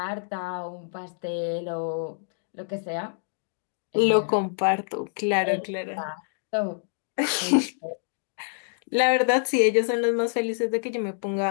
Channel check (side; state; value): right; silent; digital silence